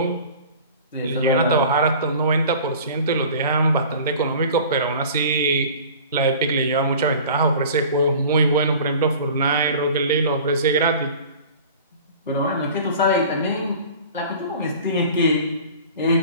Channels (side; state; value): both; inverted; correlation -0.42